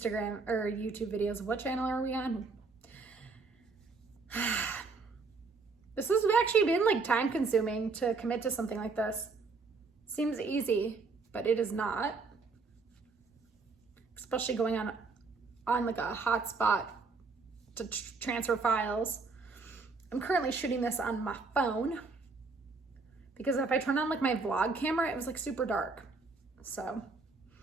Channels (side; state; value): left; quieter; 4.2 dB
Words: or YouTube videos. What channel are we on? This has actually been like time consuming to commit to something like this. Seems easy, but it is not. Especially going on like a hotspot to transfer files. I'm currently shooting this on my phone because if I turn on like my vlog camera, it was like super dark. So,